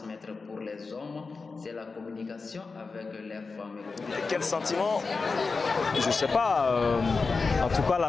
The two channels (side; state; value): right; quieter; 4.3 dB